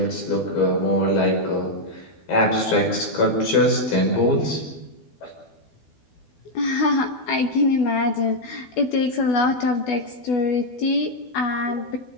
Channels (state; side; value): late; right; 12 ms